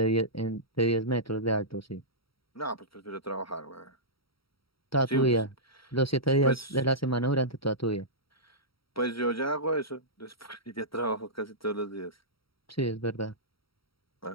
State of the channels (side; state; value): right; late; 0.75 ms